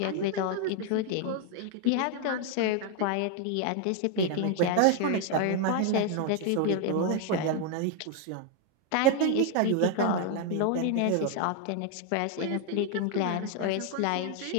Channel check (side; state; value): both; different; correlation 0.00